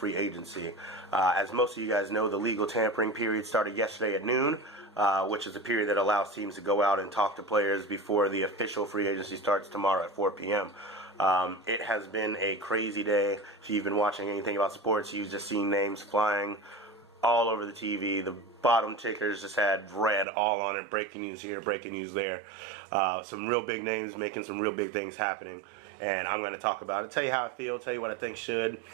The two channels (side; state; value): left; drops out; at 20.2 s